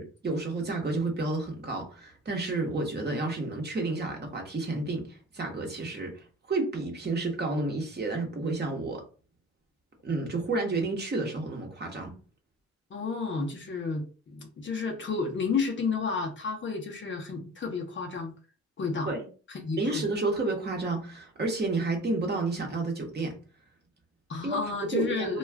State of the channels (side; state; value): both; normal; correlation 0.40